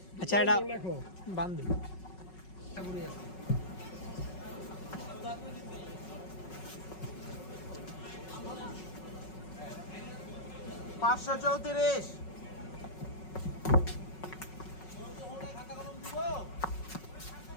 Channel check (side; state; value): right; late; 5.4 ms